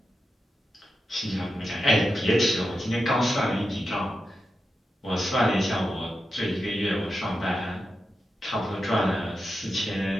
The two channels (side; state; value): both; normal; correlation 0.89